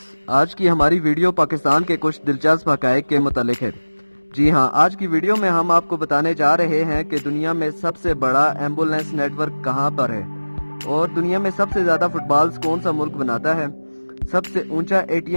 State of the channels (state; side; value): inverted; both; correlation -1.00